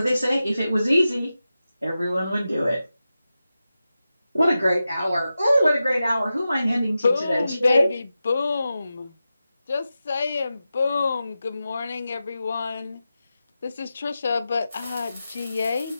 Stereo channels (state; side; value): inverted; both; correlation -0.92